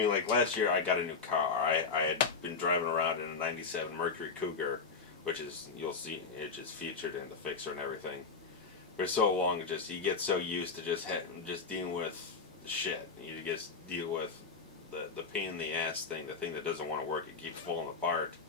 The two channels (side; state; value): right; quieter; 4.9 dB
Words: like last year I got a new car. I had been driving around in a 97 Mercury Cougar, which is, you'll see, it's just featured in the fixer and everything. For so long, you get so used to just dealing with shit. You just deal with the pain in the ass thing, the thing that doesn't want to work, it keeps falling apart.